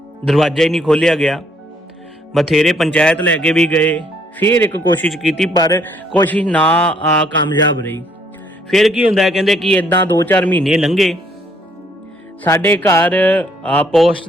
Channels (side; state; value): both; normal; correlation 0.67